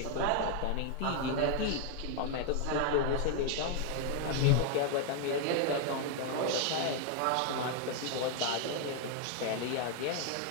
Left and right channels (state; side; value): different; both; correlation 0.00